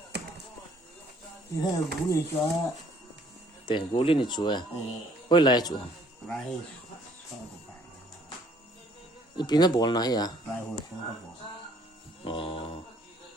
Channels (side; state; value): both; normal; correlation 0.61